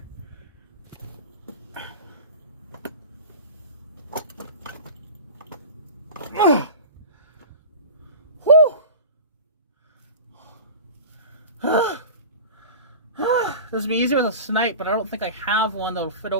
This would be easier with a snipe, but I don't think I have one that'll fit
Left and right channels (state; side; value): inverted; both; correlation -0.33